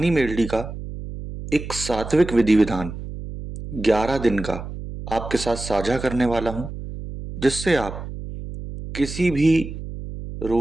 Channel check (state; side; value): noise; right; hum, 9 dB below the sound